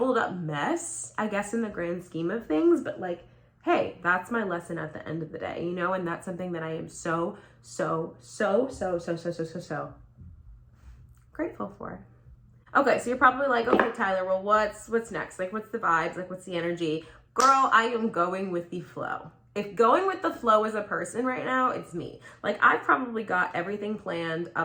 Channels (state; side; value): identical; both; correlation 1.00